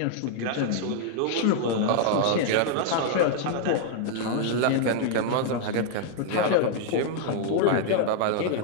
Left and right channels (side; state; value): both; different; correlation 0.00